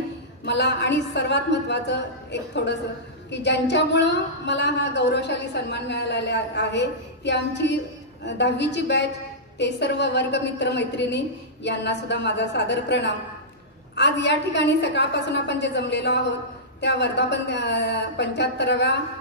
मला आणि सर्वात महत्त्वाचं एक थोडंसं की ज्यांच्यामुळं मला हा गौरवशाली सन्मान मिळालेला आहे ती आमची 10वीची बॅच, ते सर्व वर्गमित्र मैत्रिणी यांना सुद्धा माझा सादर प्रणाम. आज या ठिकाणी सकाळपासून आपण जे जमलेलो आहोत त्या वर्धापन 75व्या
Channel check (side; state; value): both; normal; correlation -0.15